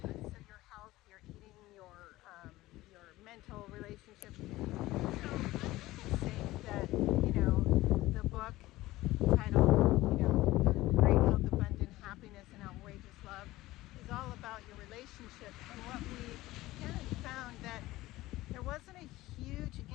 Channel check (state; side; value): quieter; right; 17.6 dB